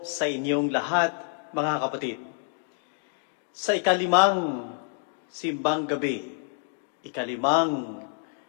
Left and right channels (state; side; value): silent; right; digital silence